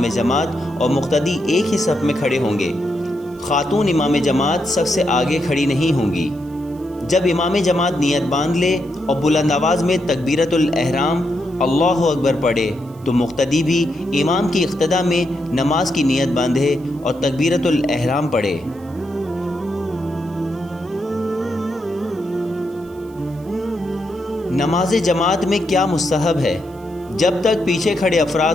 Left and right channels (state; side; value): noise; right; hiss, 28 dB below the sound